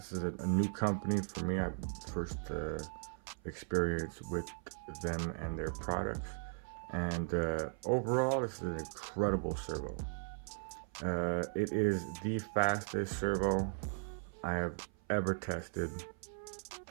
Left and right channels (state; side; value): silent; left; 53 dB below the other